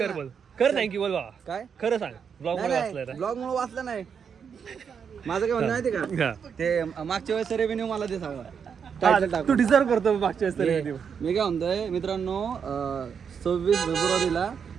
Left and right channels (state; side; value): quieter; left; 6.9 dB